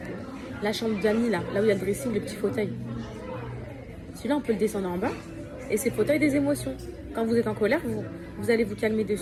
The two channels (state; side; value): identical; both; correlation 1.00